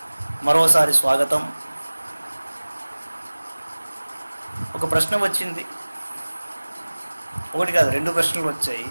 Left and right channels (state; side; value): inverted; both; correlation -1.00